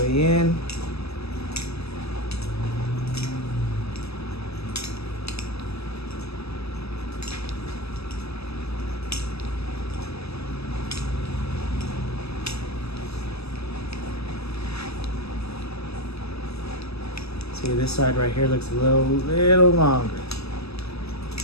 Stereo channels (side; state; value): right; late; 0.79 ms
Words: in. See, this side right here looks a little longer.